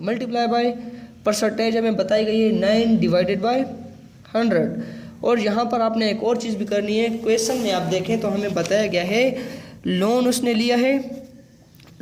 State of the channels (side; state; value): both; identical; correlation 1.00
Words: मल्टीप्लाई बाय परसेंटेज हमें बताई गई है 9 डिवाइडेड बाय 100। और यहाँ पर आपने एक और चीज़ भी करनी है। क्वेश्चन में आप देखें तो हमें बताया गया है लोन उसने लिया है